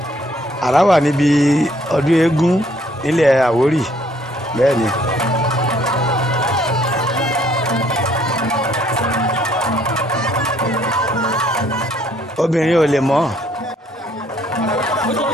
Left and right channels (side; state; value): both; normal; correlation 0.64